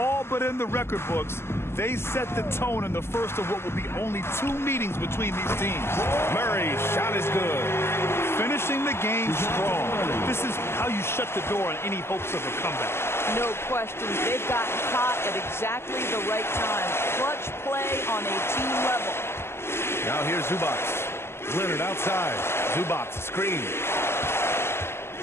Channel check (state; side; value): late; right; 0.12 ms